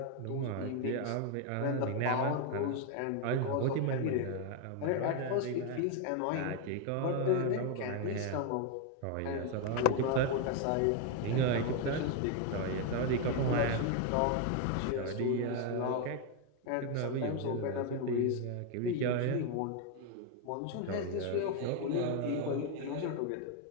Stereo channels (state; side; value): different; both; correlation 0.01